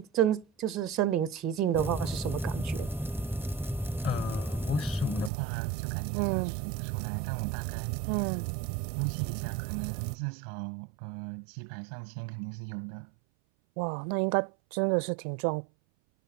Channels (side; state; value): left; drops out; at 5.3 s